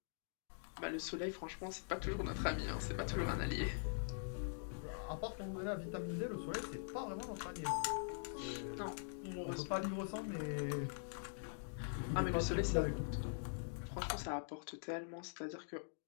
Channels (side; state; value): right; silent; digital silence